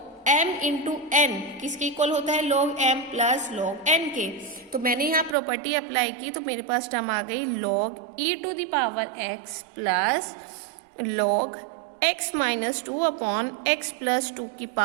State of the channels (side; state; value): left; drops out; at 5.4 s